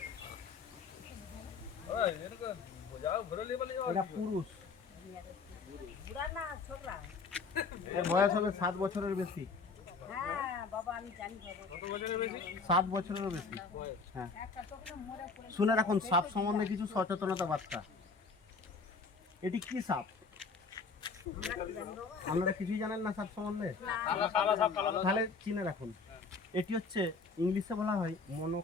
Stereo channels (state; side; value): quieter; right; 4.5 dB